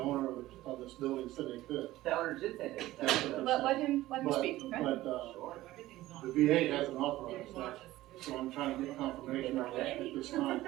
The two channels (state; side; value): quieter; left; 16.3 dB